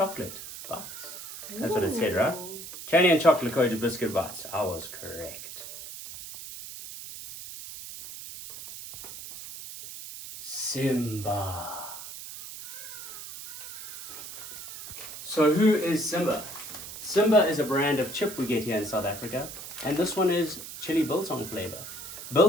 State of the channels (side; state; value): right; noise; hiss, 11 dB below the sound